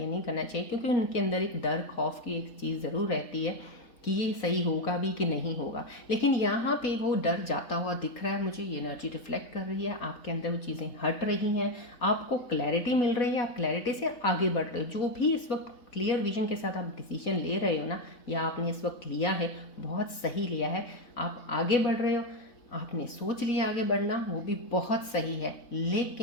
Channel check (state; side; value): late; right; 4.1 ms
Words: नहीं करना चाहिए, क्योंकि उनके अंदर एक डर, खौफ की एक चीज़ ज़रूर रहती है कि ये सही होगा भी कि नहीं होगा। लेकिन यहाँ पे वो डर जाता हुआ दिख रहा है मुझे, ये एनर्जी रिफ्लेक्ट कर रही है, आपके अंदर वो चीज़ें हट रही हैं, आपको क्लैरिटी मिल रही है, आप क्लैरिटी से आगे बढ़ रहे हो। जो भी इस वक्त क्लियर विजन के साथ आप डिसीजन ले रहे हो ना, या आपने इस वक्त लिया है, बहुत सही लिया है, आप आगे बढ़ रहे हो। आपने सोच लिया आगे बढ़ना, वो भी बहुत सही है।